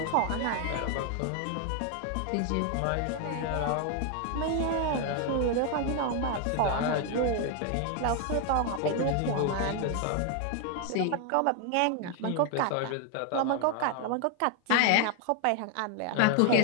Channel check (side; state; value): both; different; correlation 0.00